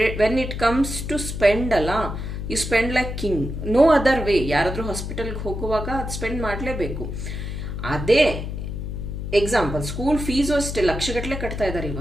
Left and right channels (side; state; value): left; noise; hum, 5 dB below the sound